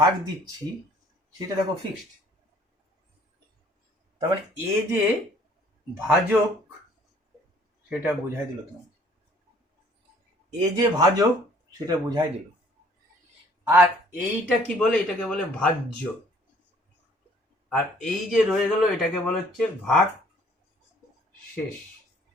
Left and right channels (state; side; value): normal; both; correlation 0.58